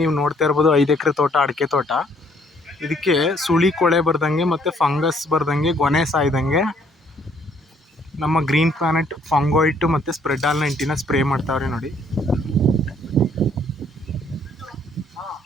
ನೀವು ನೋಡ್ತಾ ಇರ್ಬೋದು 5 ಎಕರೆ ತೋಟ, ಅಡಿಕೆ ತೋಟ. ಇದಕ್ಕೆ ಸುಳಿ ಕೊಳೆ ಬರ್ದಂಗೆ ಮತ್ತು ಫಂಗಸ್ ಬರ್ದಂಗೆ, ಗೊನೆ ಸಾಯ್ದಂಗೆ ನಮ್ಮ ಗ್ರೀನ್ ಪ್ಲಾನೆಟ್ ಫಂಗೋಯಿಟ್ ಮತ್ತು ಸ್ಪ್ರೆಡ್ ಆಲ್ 90ನ ಸ್ಪ್ರೇ ಮಾಡ್ತಾವ್ರೆ.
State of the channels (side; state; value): both; normal; correlation 0.64